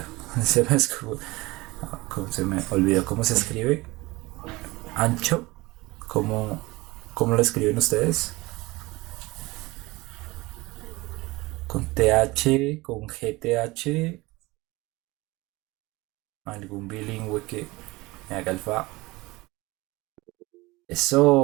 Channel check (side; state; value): left; quieter; 21.7 dB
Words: se me olvidó cómo se escribe. Ancho, ¿cómo, cómo lo escriben ustedes? Con TH, con GTH, algún bilingüe que me haga el fa.